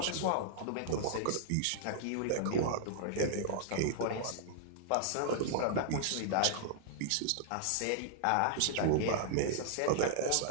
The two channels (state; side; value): different; both; correlation -0.01